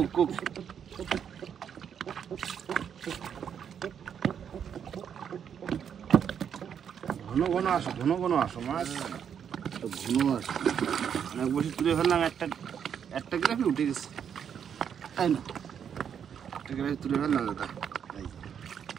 কুক ঘন ঘন আসো ঘন ঘন আসো মাছ তো ঘন আছে অনেক বসে তুলে ফেললাম। একটা একটা গ্রাফি উঠে গেছে। তাই না? একটা গ্রাফি তুলে ফেললাম দাদা।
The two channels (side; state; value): left; quieter; 8.1 dB